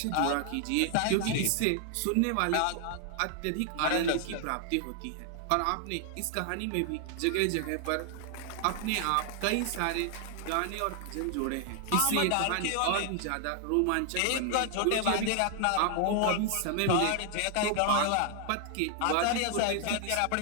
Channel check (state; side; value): different; both; correlation 0.00